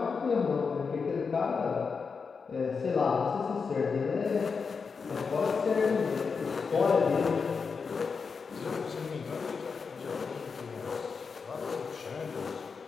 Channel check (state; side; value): quieter; right; 5.3 dB